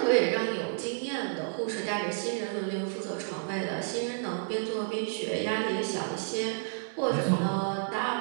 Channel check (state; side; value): silent; left; digital silence